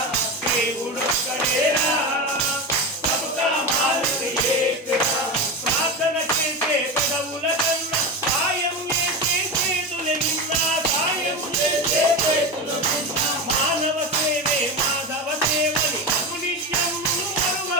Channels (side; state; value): both; normal; correlation 0.20